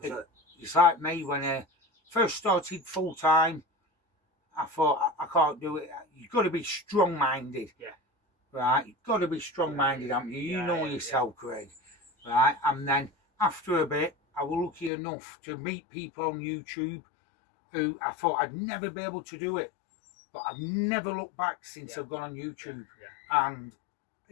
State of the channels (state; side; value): drops out; right; at 14.9 s